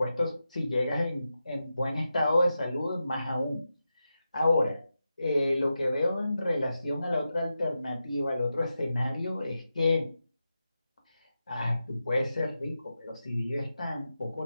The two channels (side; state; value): both; inverted; correlation -0.90